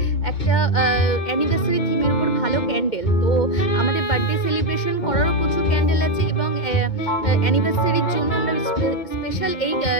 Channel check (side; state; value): right; late; 2.2 ms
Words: একটা অ্যানিভার্সারি থিমের উপর ভালো ক্যান্ডেল। তো আমাদের বার্থডে সেলিব্রেশন করারও প্রচুর ক্যান্ডেল আছে এবং অ্যানিভার্সারির জন্য আমরা স্পেশাল এই